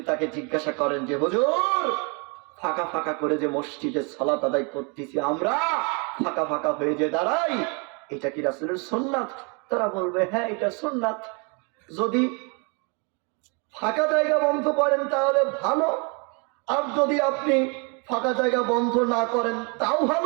তাকে জিজ্ঞাসা করেন যে হুজুর ফাঁকা ফাঁকা করে যে মসজিদে সালাত আদায় করতেছি আমরা, ফাঁকা ফাঁকা হয়ে যে দাঁড়াই, এটা কি রাসূলের সুন্নাত? তারা বলবে হ্যাঁ এটা সুন্নাত। যদি ফাঁকা জায়গা বন্ধ করেন তাহলে ভালো, আর যদি আপনি ফাঁকা জায়গা বন্ধ না করেন তাও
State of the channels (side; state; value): left; quieter; 33.4 dB